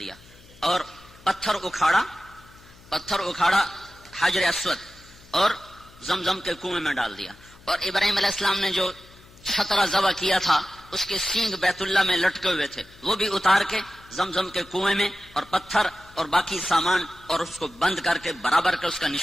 اور پتھر اکھاڑا حجر اسود اور زمزم کے کنویں میں ڈال دیا. اور ابراہیم علیہ السلام نے جو چھترا ذبح کیا تھا اس کے سینگ بیت اللہ میں لٹکے ہوئے تھے، وہ بھی اتار کے زمزم کے کنویں میں اور پتھر اور باقی سامان اور اس کو بند کر کے برابر کے اس کا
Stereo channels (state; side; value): noise; left; hum, 24 dB below the sound